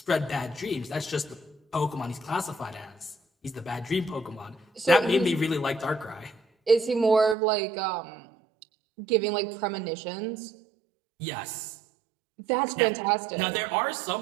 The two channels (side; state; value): left; drops out; at 7.4 s